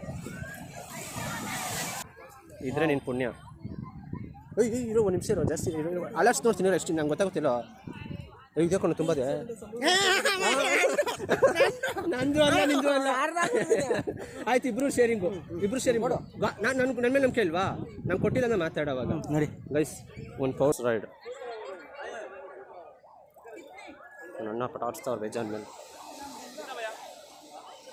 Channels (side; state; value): both; identical; correlation 1.00